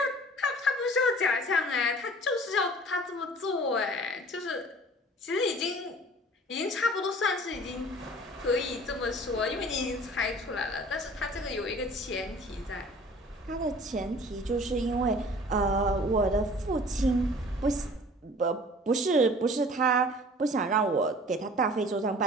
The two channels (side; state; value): both; normal; correlation 0.47